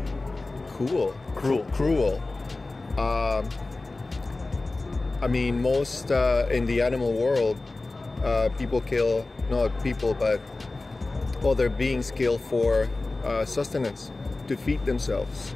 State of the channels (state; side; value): quieter; right; 3.2 dB